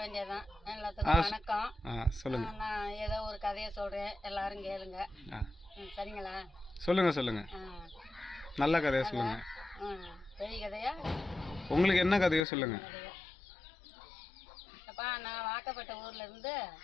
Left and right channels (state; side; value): drops out; right; at 12.5 s